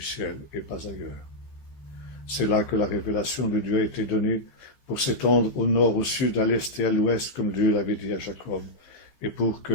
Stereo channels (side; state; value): right; late; 15 ms